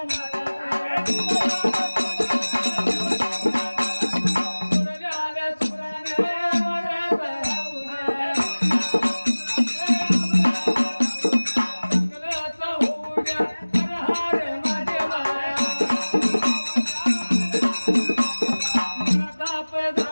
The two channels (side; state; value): both; inverted; correlation -1.00